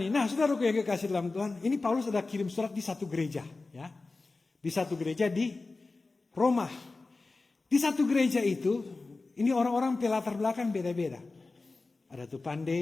Nah, saudaraku yang kekasih dalam Tuhan, ini Paulus ada kirim surat di satu gereja, ya. Di satu gereja di Roma. Di satu gereja itu, ini orang-orang pelatar belakang beda-beda. Ada tuh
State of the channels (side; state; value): right; quieter; 3.6 dB